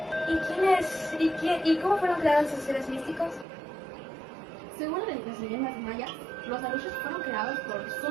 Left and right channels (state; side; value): drops out; left; at 3.5 s